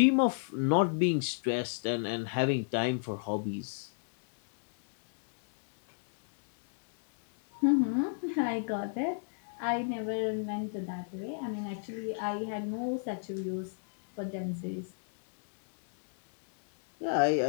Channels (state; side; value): silent; right; digital silence